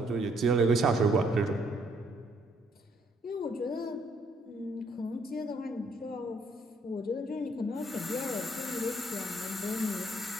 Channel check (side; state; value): both; normal; correlation 0.68